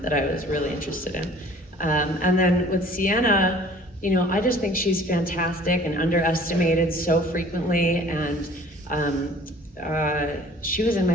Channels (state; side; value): normal; both; correlation 0.51